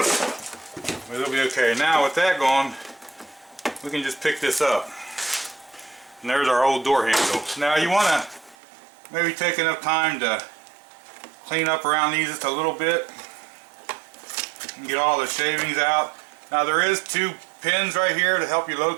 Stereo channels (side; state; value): left; drops out; at 8.6 s